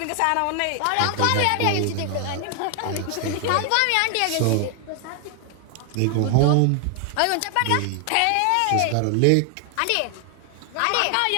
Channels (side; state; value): both; different; correlation 0.00